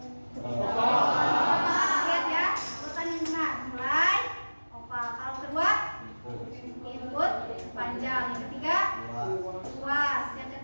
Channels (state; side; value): inverted; both; correlation -1.00